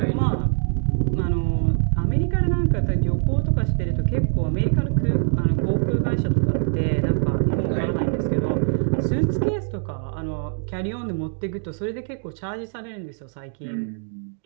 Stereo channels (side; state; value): left; silent; digital silence